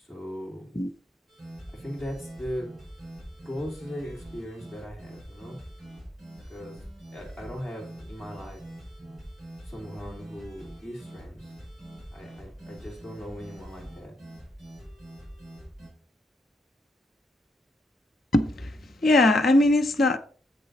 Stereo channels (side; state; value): both; normal; correlation 0.78